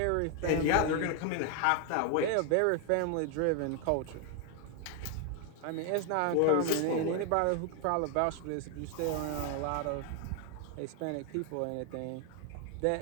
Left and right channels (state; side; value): different; both; correlation 0.01